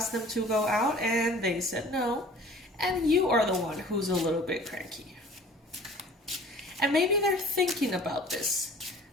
them to go out, and they said no. And you are the one who's a little bit cranky. And maybe they're thinking about this.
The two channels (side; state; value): both; normal; correlation 0.48